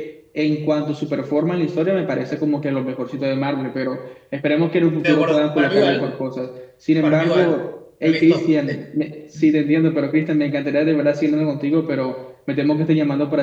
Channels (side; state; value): both; identical; correlation 1.00